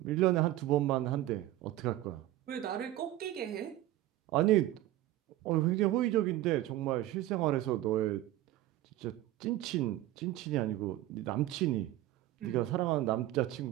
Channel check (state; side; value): quieter; left; 14.9 dB